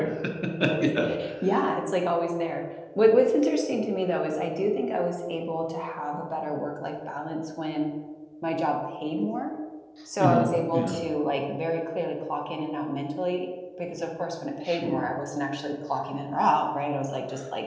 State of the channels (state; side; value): identical; both; correlation 1.00